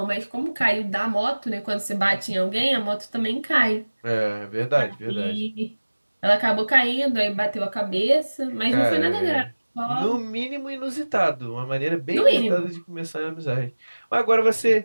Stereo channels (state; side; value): inverted; both; correlation -1.00